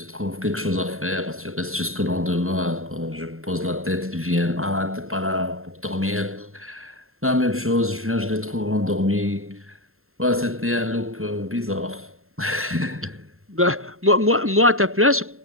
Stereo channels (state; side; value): late; left; 0.62 ms